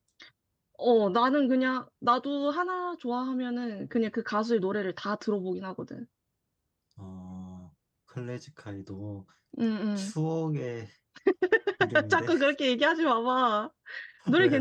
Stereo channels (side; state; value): both; identical; correlation 1.00